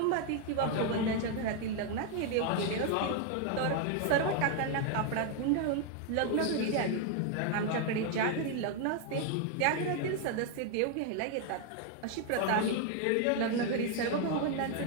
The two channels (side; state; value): both; different; correlation 0.01